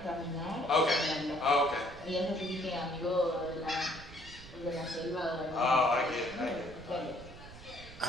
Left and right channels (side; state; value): right; noise; rumble, 17 dB below the sound